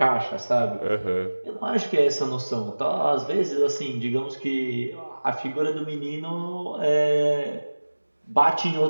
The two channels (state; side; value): inverted; both; correlation -1.00